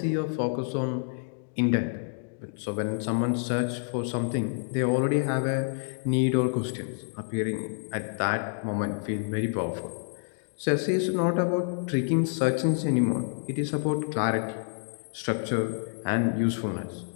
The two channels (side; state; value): right; silent; digital silence